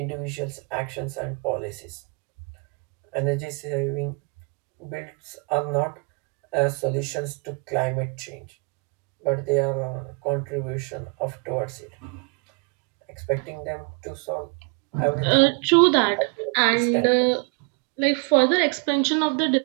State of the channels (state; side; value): quieter; left; 35.3 dB